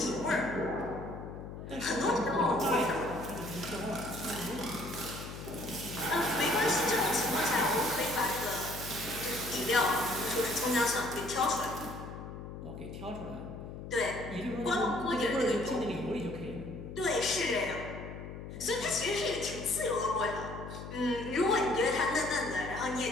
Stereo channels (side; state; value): left; noise; hum, 10 dB below the sound